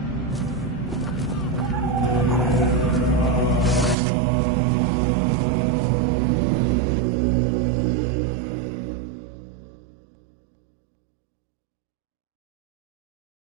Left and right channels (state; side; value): drops out; left; at 4.0 s